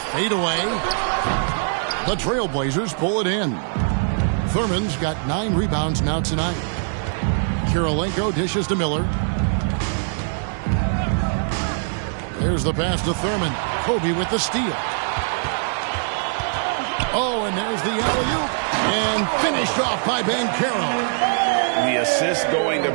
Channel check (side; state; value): left; silent; 64 dB below the other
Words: Fade away. The Trailblazers pull it in. Thurman's got 9 rebounds now tonight. Kirilenko dishes to Miller. There's the pass to Thurman. Kobe with the steal. Oh, and there's the alley-oop. And finished off by Banchero. The assist going to